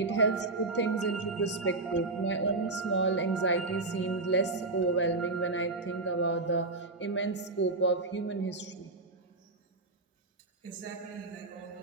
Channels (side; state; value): left; quieter; 3.2 dB